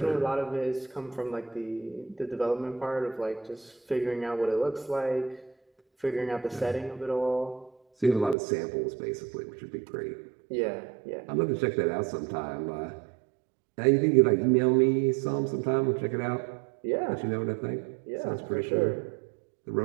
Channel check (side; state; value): left; drops out; at 8.3 s